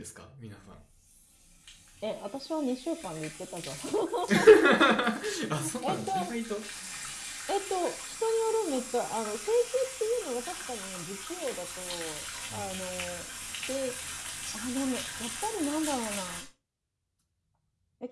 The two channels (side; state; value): both; identical; correlation 1.00